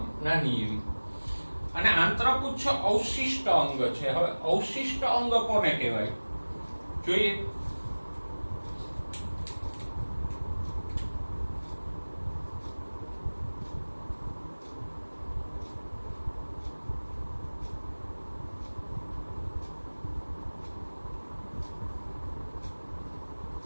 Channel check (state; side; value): inverted; both; correlation -1.00